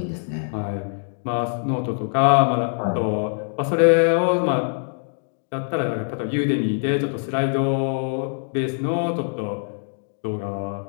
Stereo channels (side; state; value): right; silent; 63 dB below the other